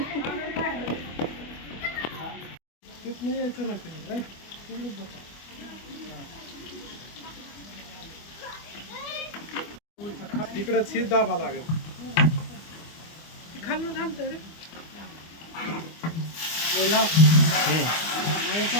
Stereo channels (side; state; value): right; late; 25 ms